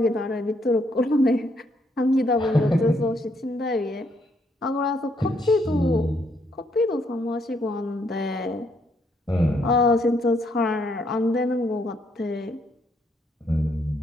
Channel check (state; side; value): normal; both; correlation 0.72